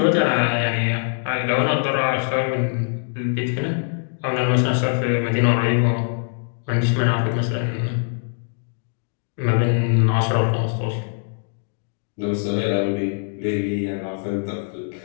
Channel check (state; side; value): silent; right; digital silence